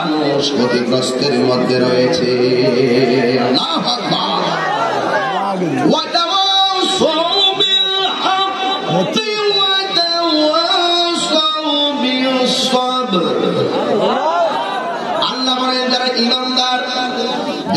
ক্ষতিগ্রস্তের মধ্যে রয়েছে। আল্লাহু আকবার। ওয়া তাওয়াসাউ বিল হাক্কি ওয়া তাওয়াসাউ বিস সাবর। আল্লাহ বলেন যারা ঈমানদার,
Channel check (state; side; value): identical; both; correlation 1.00